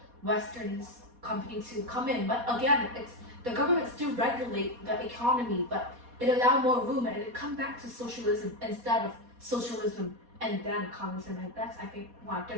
Western companies to come in. But again, it's the government still regulate the economy, but it allow more room, and it come back to socialism instead of socialism and then communism. And that's, I think, why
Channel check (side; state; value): left; late; 4.2 ms